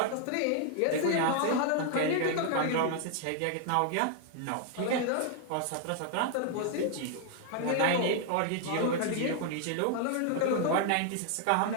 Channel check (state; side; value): different; both; correlation 0.00